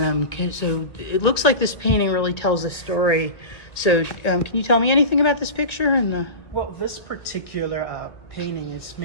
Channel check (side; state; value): right; late; 1.9 ms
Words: so it looks like this painting really tells a story. So can you tell me anything about this picture? Well, this particular painting is